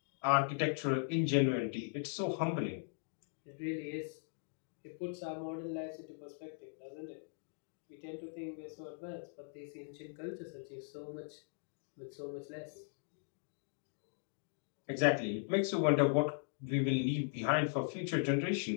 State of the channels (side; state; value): right; silent; digital silence